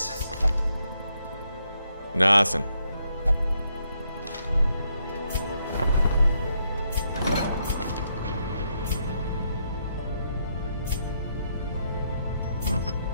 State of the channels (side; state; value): both; inverted; correlation -0.77